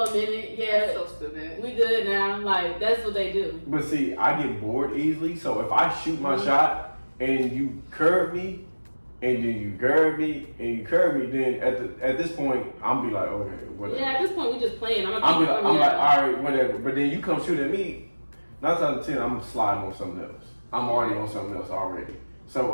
minute. Yeah, That's so stupid. we good now. Like that's what they do. But see, I get bored easily, so if I shoot my shot and you curve me, and then you curve me, and you curve me, then at this point, I'm be like, okay, whatever. Yeah, at this point we just playing. I'm I'm like, all right, whatever. But then you come shoot at me, 9 times out of 10, I'm sliding on something else. I'm already on something else already.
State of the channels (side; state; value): both; inverted; correlation -1.00